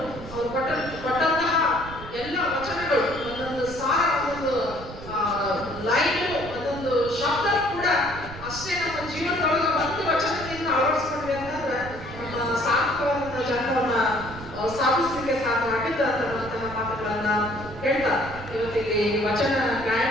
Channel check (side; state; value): right; noise; rumble, 13 dB below the sound